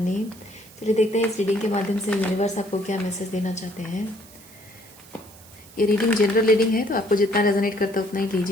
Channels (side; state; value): right; noise; hiss, 22 dB below the sound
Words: चलिए देखते हैं इस रीडिंग के माध्यम से यूनिवर्स आपको क्या मैसेज देना चाहते हैं। ये रीडिंग जनरल रीडिंग है, तो आपको जितना रेजोनेट करता है उतना ही